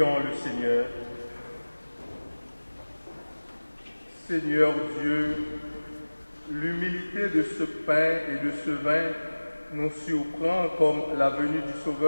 le Seigneur. Seigneur Dieu, l'humilité de ce pain et de ce vin nous surprend comme la venue du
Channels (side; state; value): both; inverted; correlation -1.00